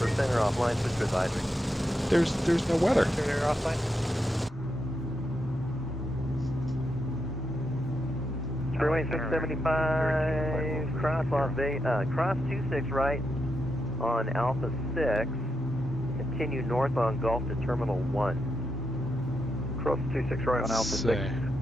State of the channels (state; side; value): normal; both; correlation 0.84